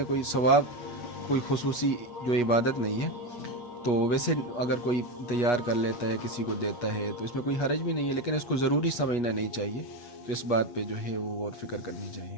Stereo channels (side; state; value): right; late; 8.3 ms